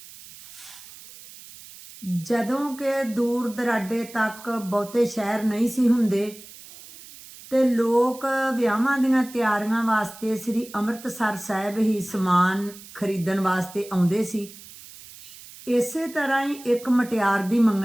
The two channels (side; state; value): right; noise; hiss, 18 dB below the sound